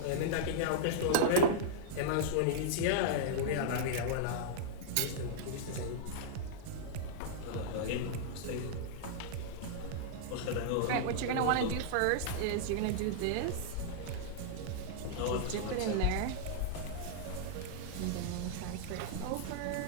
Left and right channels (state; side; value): different; both; correlation -0.02